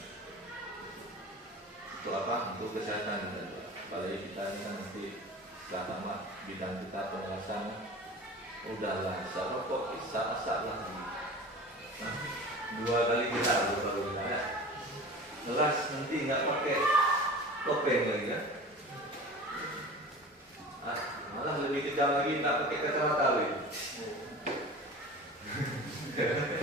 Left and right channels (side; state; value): both; normal; correlation 0.37